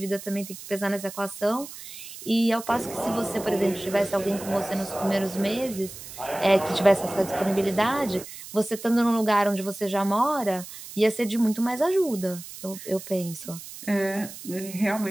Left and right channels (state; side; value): noise; right; hiss, 13 dB below the sound